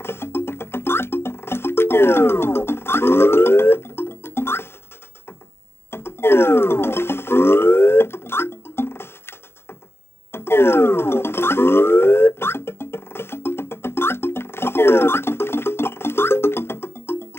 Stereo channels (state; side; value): late; right; 0.12 ms